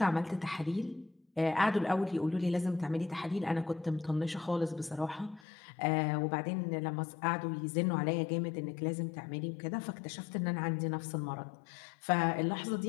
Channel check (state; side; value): drops out; right; at 5.4 s